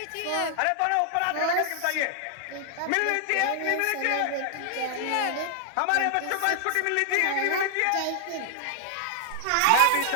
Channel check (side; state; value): both; different; correlation 0.00